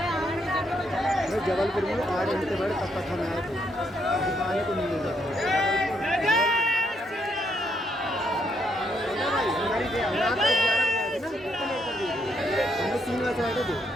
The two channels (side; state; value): both; normal; correlation 0.75